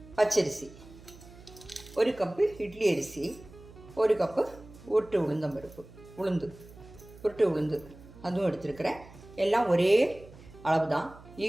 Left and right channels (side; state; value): right; noise; hum, 20 dB below the sound